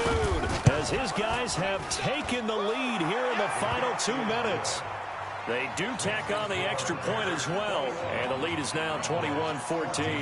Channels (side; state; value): both; identical; correlation 1.00